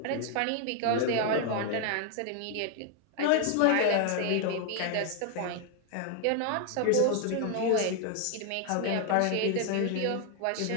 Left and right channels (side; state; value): both; different; correlation 0.00